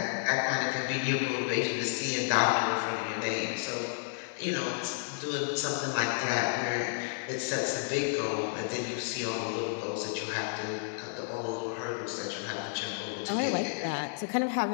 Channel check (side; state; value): right; silent; digital silence